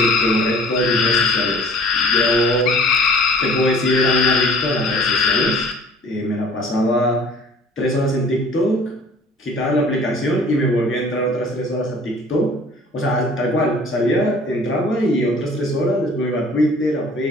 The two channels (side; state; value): both; normal; correlation 0.50